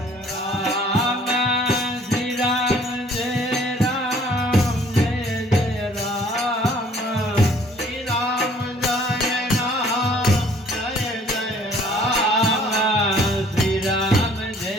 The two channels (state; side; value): normal; both; correlation 0.57